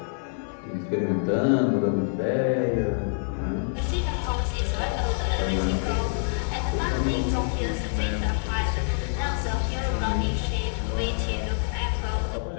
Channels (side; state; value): right; silent; 61 dB below the other